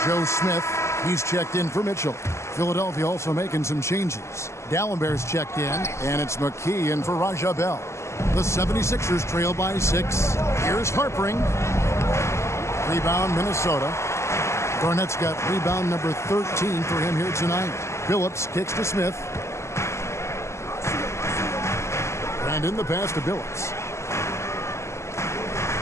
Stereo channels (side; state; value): right; late; 0.13 ms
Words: Joe Smith, he's checked in for Mitchell. Philadelphia also making some changes. Gallenberg's checked in, and it's McKee in for Raja Bell. The 76ers trail by 6. Here's Harpering. Rebound, Minnesota. Garnett's got rebound number 13 for him here tonight. Phillips kicks to Smith. Brandon, the pass to Phillips.